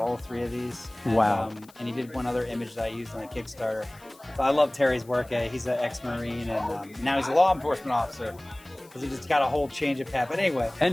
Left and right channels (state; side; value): noise; left; hiss, 26 dB below the sound